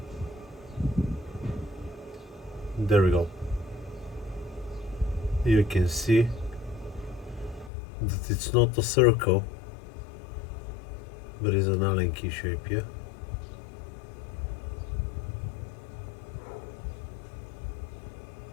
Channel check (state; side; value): drops out; right; at 7.7 s